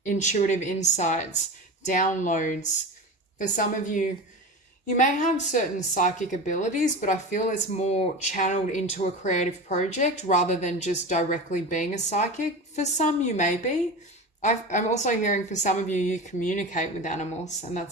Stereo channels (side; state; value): both; normal; correlation 0.28